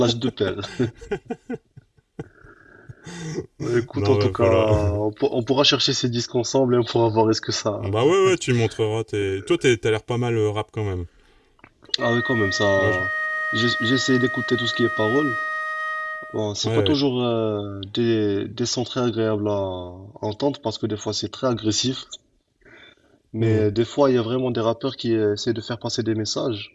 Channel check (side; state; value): both; identical; correlation 1.00